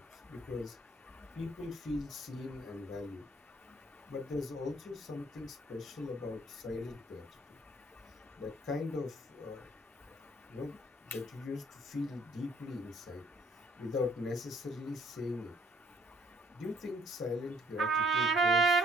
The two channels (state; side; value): normal; both; correlation 0.62